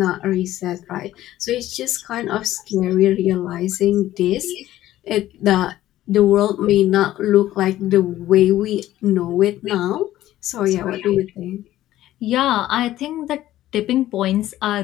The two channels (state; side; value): quieter; right; 14.1 dB